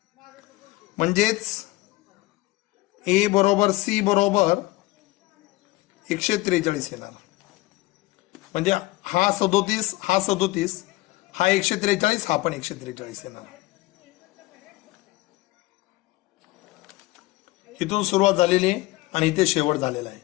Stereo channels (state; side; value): quieter; right; 20.2 dB